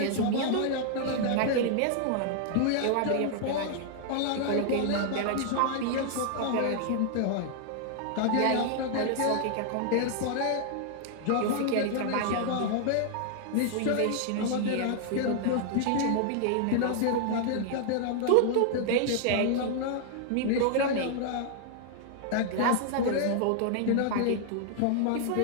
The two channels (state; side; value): different; both; correlation 0.00